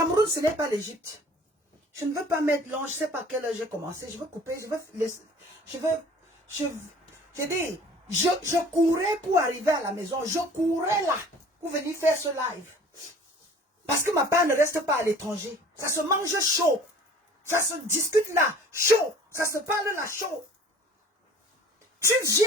ce n'est pas l'Égypte. Je ne veux pas mettre long, je ne sais pas à quelle heure j'ai commencé. Je veux couper, je courais pour arriver à la maison. Je courais là pour venir faire ce live. Parce que ma part ne reste pas à l'étranger. Ça se mange chaud. Ça se discute là, chaud. Ça se parle là, chaud. Tu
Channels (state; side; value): normal; both; correlation 0.48